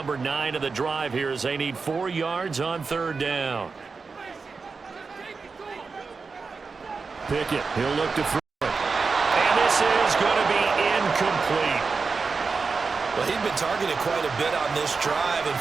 9 of the drive here as they need 4 yards on 3rd down. Pickett, he'll look to throw it. And this is going to be incomplete. Well, he'd been targeted quite a bit on this drive, and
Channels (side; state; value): left; quieter; 4.7 dB